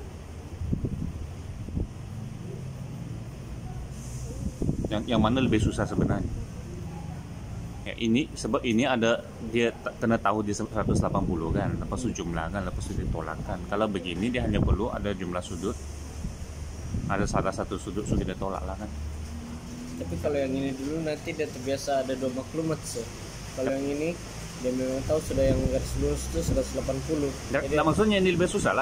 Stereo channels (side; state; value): both; identical; correlation 1.00